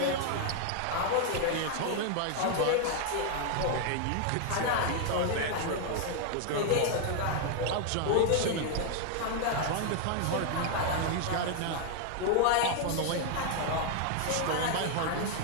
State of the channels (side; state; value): both; different; correlation 0.00